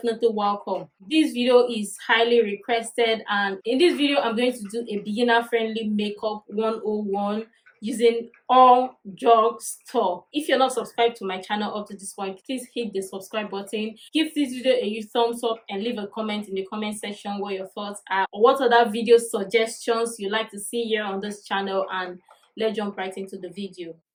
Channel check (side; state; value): both; identical; correlation 1.00